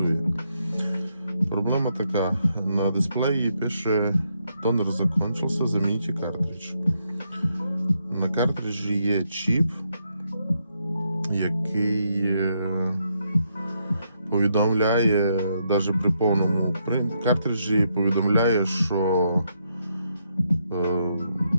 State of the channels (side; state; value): both; inverted; correlation -0.78